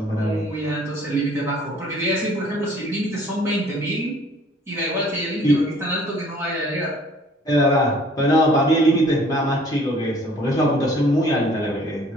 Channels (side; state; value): both; normal; correlation 0.55